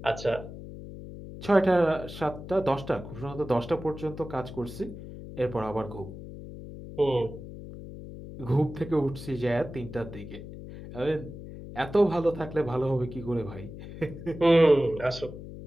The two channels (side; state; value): left; noise; hum, 12 dB below the sound